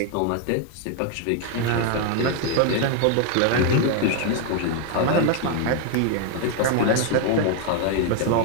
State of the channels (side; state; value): both; different; correlation 0.00